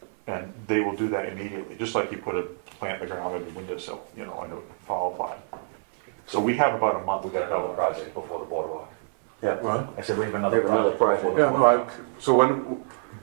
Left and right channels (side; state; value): left; silent; 57 dB below the other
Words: And they will do that immediately, just like you put a plant in the ground in the windowsill, you know, in a fall pot. So we have about a month. We got another project before the boardwalk. Yeah. What? I said we have another We have another project. project. Yeah, no, so when,